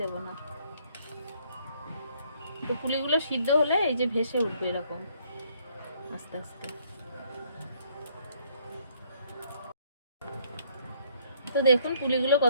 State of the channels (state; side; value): inverted; both; correlation -0.66